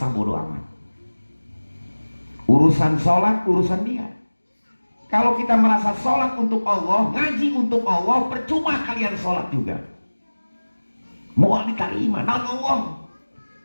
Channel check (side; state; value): both; inverted; correlation -1.00